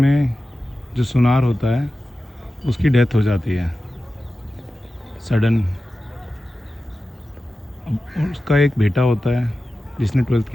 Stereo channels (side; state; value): both; normal; correlation 0.94